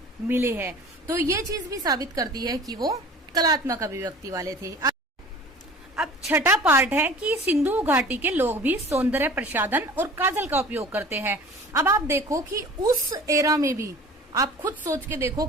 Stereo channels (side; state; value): both; normal; correlation 0.43